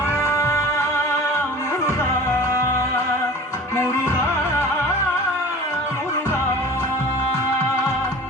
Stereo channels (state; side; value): normal; both; correlation 0.41